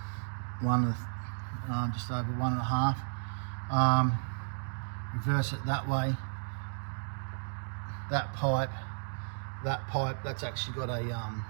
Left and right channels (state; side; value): silent; left; digital silence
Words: just over 1.5. Reverse it that way. That pipe, that's actually got a